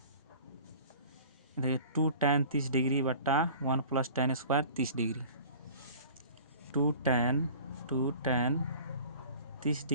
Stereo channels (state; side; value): inverted; both; correlation -0.44